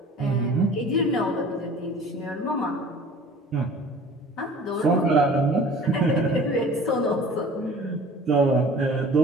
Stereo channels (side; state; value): both; normal; correlation 0.45